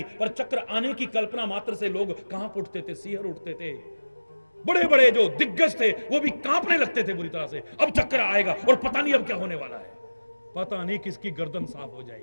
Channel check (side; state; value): both; inverted; correlation -1.00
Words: पर चक्र आने की कल्पना मात्र से लोग कहां उठते थे, सिहर उठते थे। बड़े बड़े जो दिग्गज थे वो भी कांपने लगते थे बुरी तरह से। अब चक्र आएगा और पता नहीं अब क्या होने वाला है, पता नहीं किसकी गर्दन साफ हो